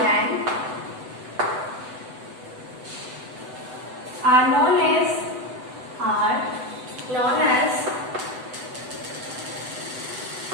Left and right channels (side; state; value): left; late; 8.0 ms